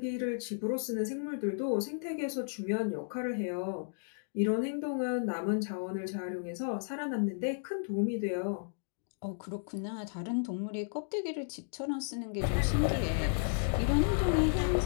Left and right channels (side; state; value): right; silent; digital silence